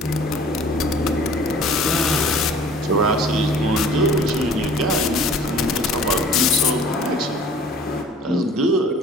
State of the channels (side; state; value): both; normal; correlation 0.49